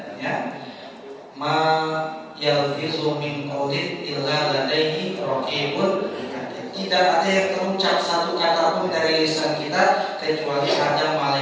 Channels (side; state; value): both; identical; correlation 1.00